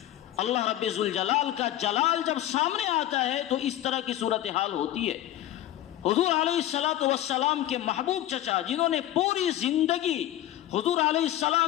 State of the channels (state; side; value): quieter; right; 13.4 dB